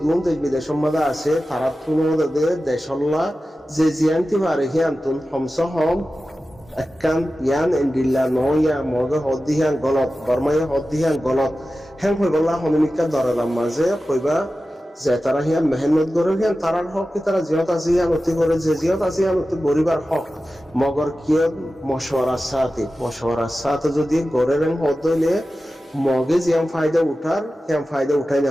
গুণ দেশ বিদেশের মাঝে আছে তারা তুলনাতে দেশল্লা যে জিয়ান্তি পারে হিয়ান্তুন হমস হম একান ইয়ান এন্ডিল্লা নয়া মগে হদ্দিহান গলত বর্মায় হদ্দিহান গলত হ্যাং হইবল্লা হমিকা দরালাম মাঝে কইবা যে তারা হিয়ান মেহনত করে হিয়ান তারার হক কি তারা জিয়ত আছে হিয়ান অতি করে যে জিয়ত আছে হিয়ান অতি গরিবার হক মগর কিয় মশওয়ারার সাথে যদি গড়ের হদলে মগে জিয়াম ফায়দা উঠাই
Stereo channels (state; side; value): normal; both; correlation 0.94